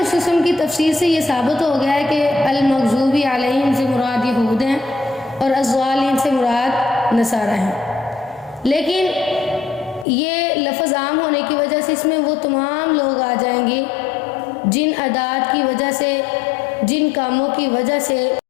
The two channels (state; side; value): drops out; right; at 10.1 s